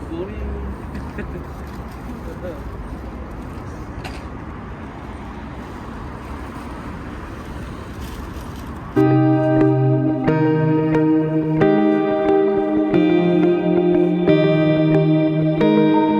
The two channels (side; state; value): both; identical; correlation 1.00